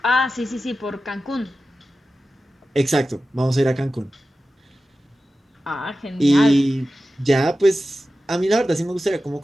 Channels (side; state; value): both; normal; correlation 0.94